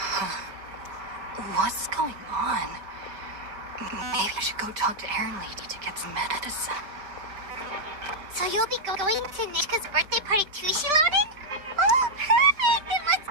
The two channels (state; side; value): late; left; 5.1 ms